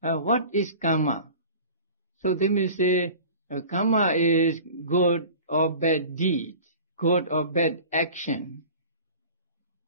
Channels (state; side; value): inverted; both; correlation -0.40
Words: is karma? So they may say, karma is good or bad deed, good or bad action.